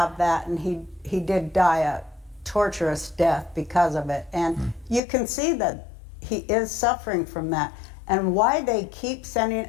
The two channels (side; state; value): right; drops out; at 5.0 s